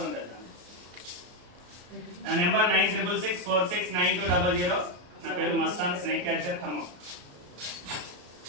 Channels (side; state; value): left; late; 33 ms